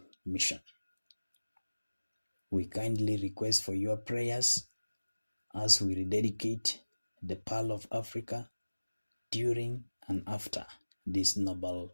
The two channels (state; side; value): inverted; both; correlation -1.00